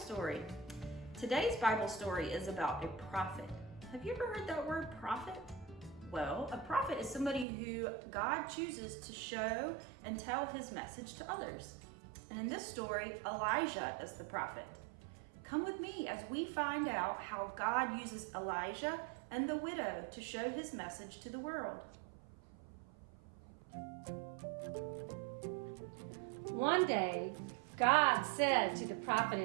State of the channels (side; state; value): left; drops out; at 7.5 s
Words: Today's Bible story is about a prophet. Have you ever heard that word prophet? Well, a prophet is somebody who God chooses to show and tell his message to others. And in this story, Elijah is the prophet. Come with me as we find out how God uses Elijah and the widow to show his message to the world. One day, God said to the prophet